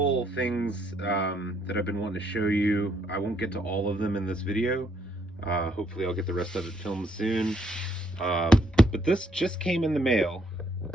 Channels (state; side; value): normal; both; correlation 0.71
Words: things that I've been wanting to show you. I won't get to all of them in this video. Hopefully, I'll get the rest of it filmed soon. Um, but this just came in the mail.